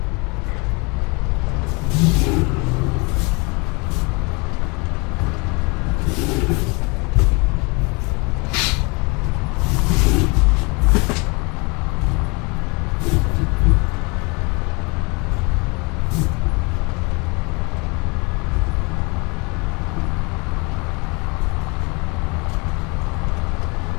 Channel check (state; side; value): quieter; right; 29.3 dB